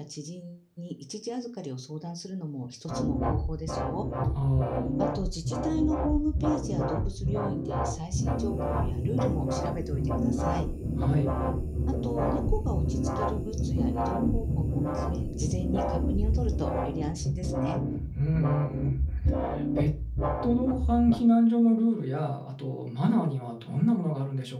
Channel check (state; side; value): identical; both; correlation 1.00